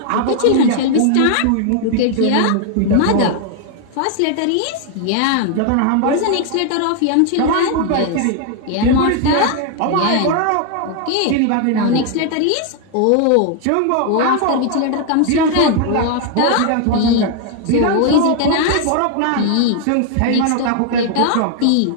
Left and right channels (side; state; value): both; different; correlation 0.00